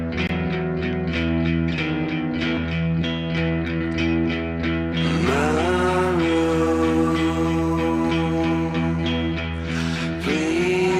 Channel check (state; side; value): identical; both; correlation 1.00